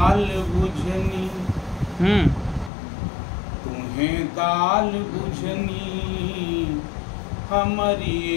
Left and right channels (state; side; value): drops out; right; at 2.7 s